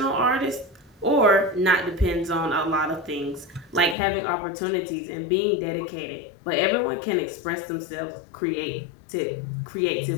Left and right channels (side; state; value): right; drops out; at 4.0 s